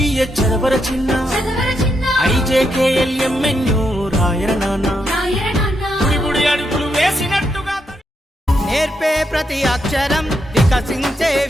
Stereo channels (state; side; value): normal; both; correlation 0.81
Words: చదవర చిన్న, IJKLMNO రాయర నాన్న. గుడి అడుగులు వేసినట్టుగా నేర్పే ప్రతి అక్షరం వికసించే